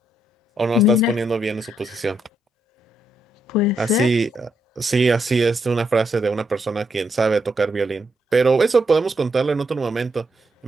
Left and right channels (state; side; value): normal; both; correlation 0.78